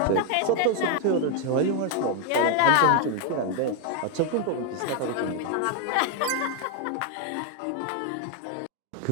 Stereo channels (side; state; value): both; different; correlation 0.01